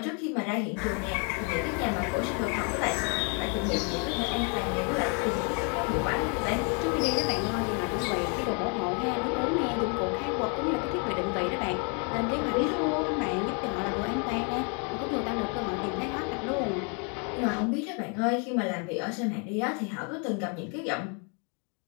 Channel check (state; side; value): quieter; right; 36.9 dB